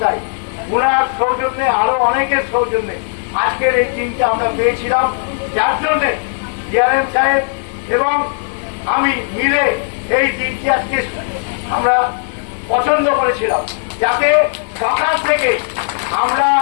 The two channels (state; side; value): silent; right; 64 dB below the other